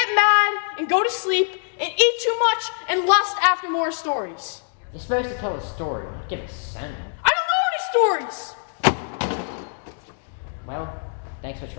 mad and go to sleep and eat too much and lust after more stories. You're supposed to tell a story, not give a sermon. I don't know any stories. Well, thanks for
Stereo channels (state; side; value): silent; right; digital silence